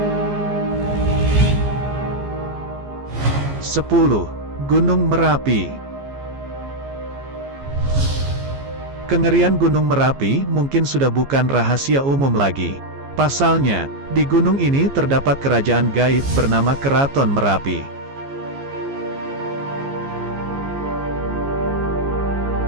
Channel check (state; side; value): late; left; 14 ms